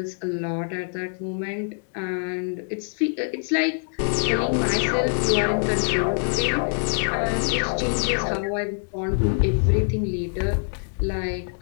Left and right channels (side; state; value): right; silent; 62 dB below the other